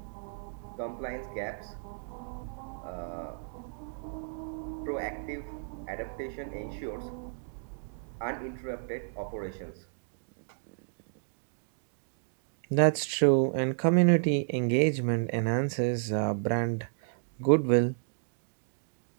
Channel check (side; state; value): left; silent; digital silence